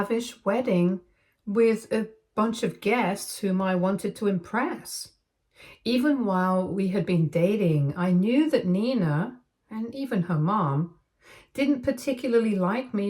wedding with a bunch of guests whom I wanted to impress. Even while we had been dating, I knew that Nina, and even her mom, didn't particularly like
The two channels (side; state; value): both; identical; correlation 1.00